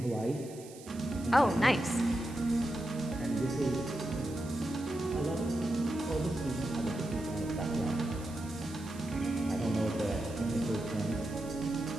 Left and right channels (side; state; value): right; noise; hiss, 19 dB below the sound